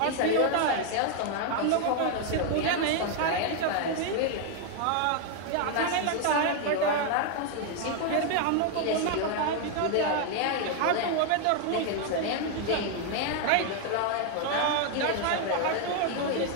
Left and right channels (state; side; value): different; both; correlation 0.00